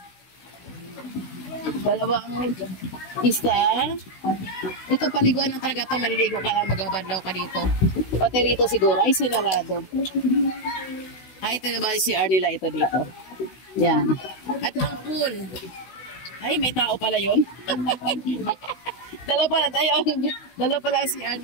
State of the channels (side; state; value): right; late; 16 ms